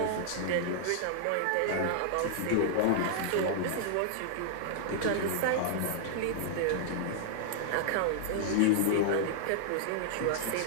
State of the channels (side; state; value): both; different; correlation -0.01